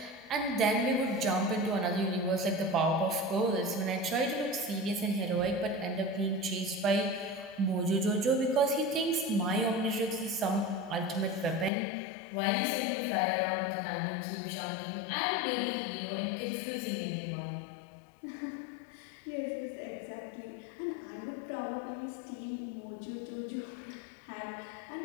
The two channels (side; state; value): right; drops out; at 11.7 s